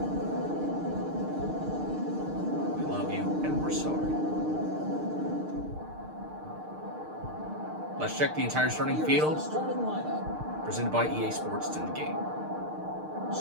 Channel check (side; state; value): left; late; 6.5 ms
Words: We love you and we're sorry. Let's check the entire starting field. Starting lineup. Presented by EA Sports. It's in the game.